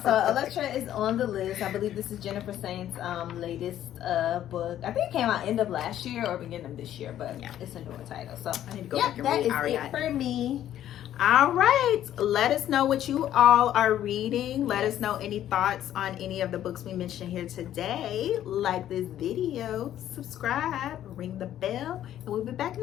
so Elektra is on the list. I believe this is Jennifer Saint's latest book. I think it came out end of last year or beginning of this year, but it's a newer title. So I need to go yeah, back and that read is Ariadne. it for me. All right, let us know what you all are reading. Let us know any thoughts on any of the books we mentioned here today. Like this video, subscribe, ring the bell, and we'll be back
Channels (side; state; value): right; quieter; 11.7 dB